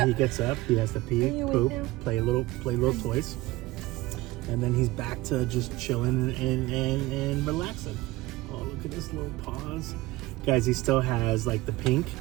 He gets up, he has to pee, Are you poop, awake now? play little toys, and then he's back to just chilling and relaxing. Oh, look at his little paws, guys. He still has like the pink,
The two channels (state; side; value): quieter; left; 19.0 dB